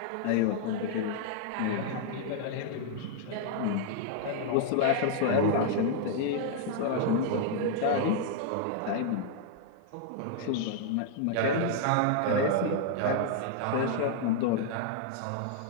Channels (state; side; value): different; both; correlation -0.01